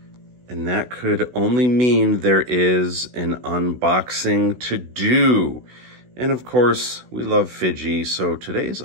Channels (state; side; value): late; left; 16 ms